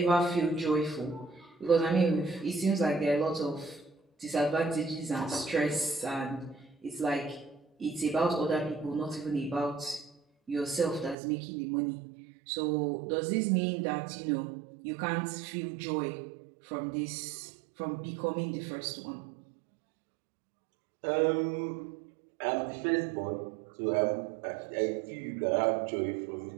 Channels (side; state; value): left; drops out; at 11.2 s